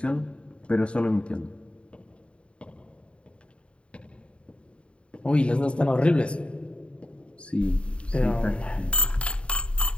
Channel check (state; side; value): late; right; 0.058 ms